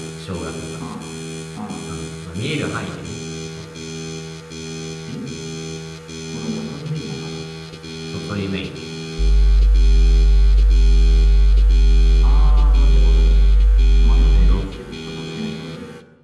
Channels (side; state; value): both; identical; correlation 1.00